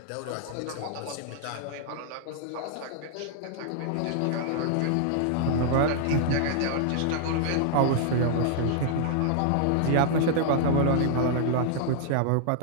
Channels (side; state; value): both; different; correlation -0.01